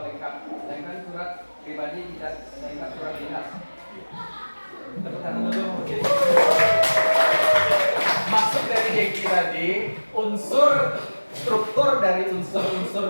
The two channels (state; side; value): inverted; both; correlation -1.00